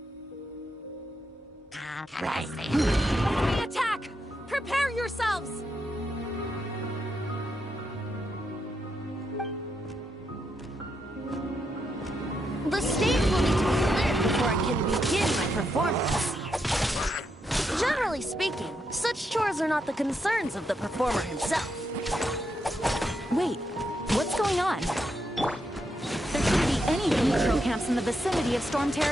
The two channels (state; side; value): normal; both; correlation 0.82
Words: Enemy attack! Prepare yourselves! The stage will need to be cleared before I can begin my performance. Generally speaking, such chores are not the concerns of the performer himself. Wait, what's going on? There shouldn't be any neutral camps in the vicinity of Storm